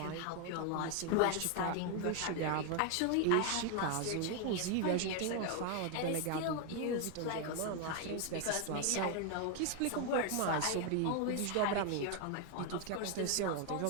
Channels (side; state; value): both; different; correlation 0.01